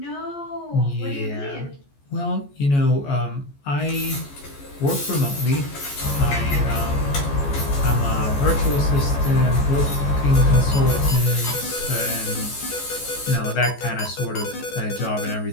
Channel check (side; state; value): right; late; 14 ms